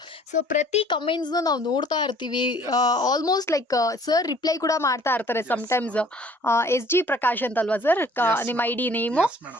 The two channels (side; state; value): both; normal; correlation 0.55